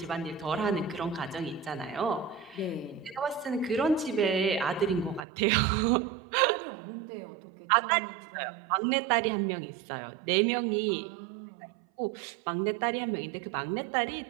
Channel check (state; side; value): drops out; left; at 5.2 s